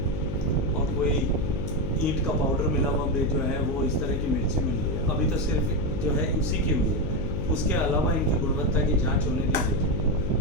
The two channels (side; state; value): left; noise; hum, 4 dB below the sound